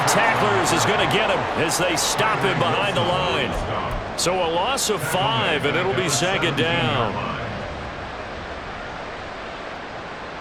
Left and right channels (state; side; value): identical; both; correlation 1.00